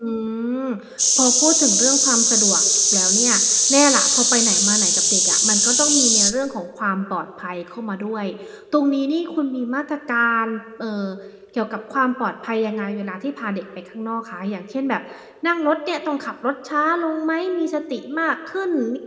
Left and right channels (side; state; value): both; identical; correlation 1.00